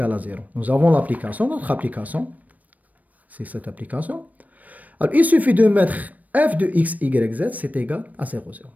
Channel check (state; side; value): late; left; 0.075 ms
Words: à 0. Nous avons l'application, notre application, c'est cette application. Alors, il suffit de mettre f de x, y, z, c'est égal à 0, 0.